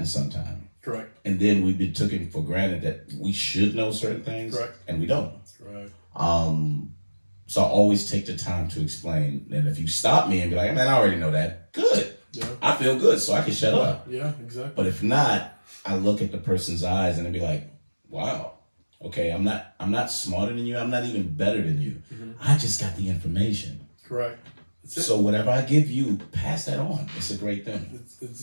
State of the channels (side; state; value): both; inverted; correlation -1.00